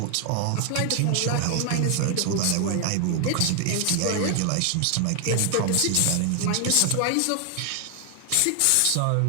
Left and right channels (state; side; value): different; both; correlation 0.00